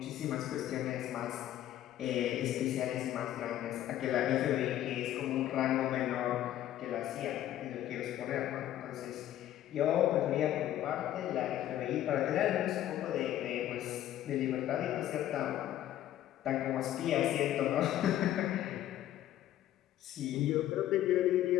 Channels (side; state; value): right; quieter; 12.6 dB